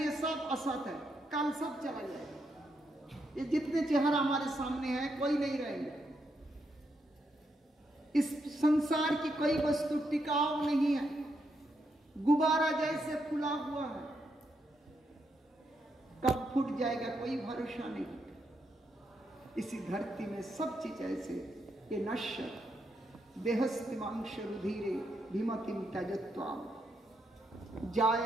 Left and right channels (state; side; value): normal; both; correlation 0.80